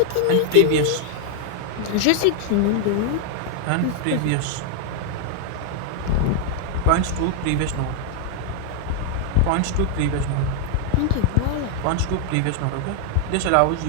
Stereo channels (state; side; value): different; both; correlation 0.00